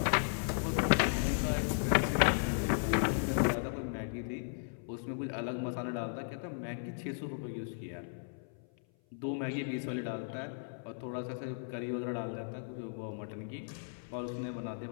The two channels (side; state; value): right; silent; 54 dB below the other